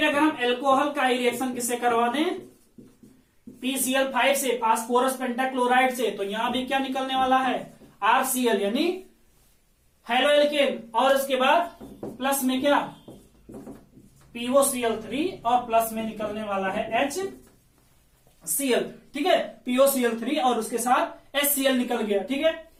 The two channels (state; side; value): identical; both; correlation 1.00